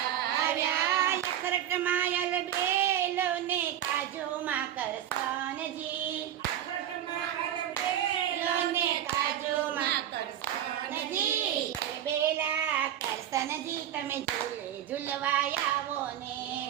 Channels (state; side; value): quieter; left; 11.1 dB